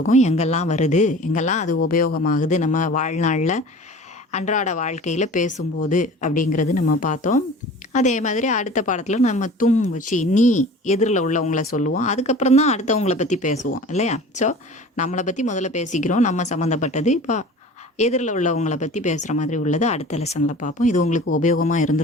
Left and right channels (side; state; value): both; normal; correlation 0.41